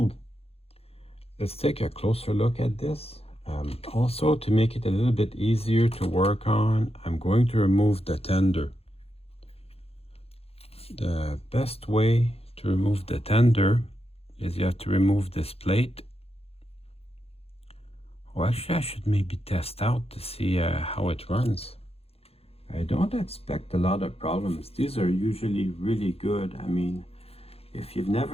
Let's take a closer look at this. Also, to make it a little bit easier to work on, I'm going to remove the tender. The best way to remove the tender is you have to remove this plate. Well, actually I should maybe test out to see how it runs. I don't expect a lot of problems. These are usually really good. I mean, if you've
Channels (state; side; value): late; right; 0.29 ms